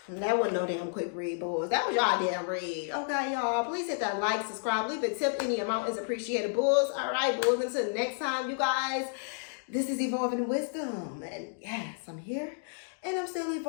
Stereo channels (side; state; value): right; silent; digital silence